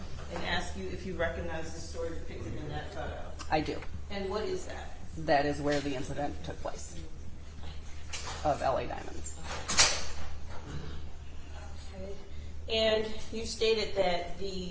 ask you if you recognize the story depicted in that photo. I do. And what is that? That is where the incident took place of LA Diamonds. Okay. And you stated that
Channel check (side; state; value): both; identical; correlation 1.00